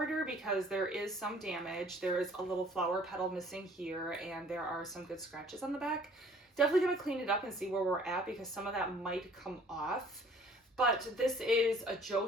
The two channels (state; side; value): normal; both; correlation 0.54